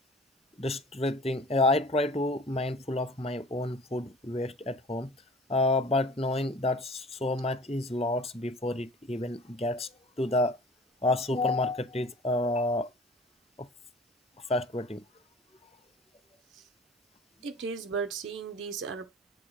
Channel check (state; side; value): normal; both; correlation 0.44